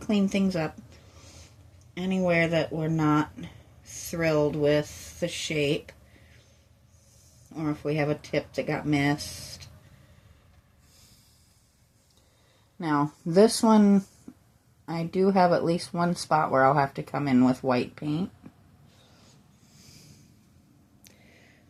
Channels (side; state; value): both; identical; correlation 1.00